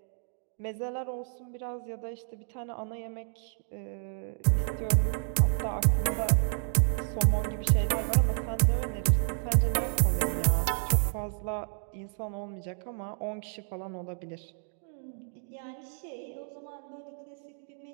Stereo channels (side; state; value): left; silent; 58 dB below the other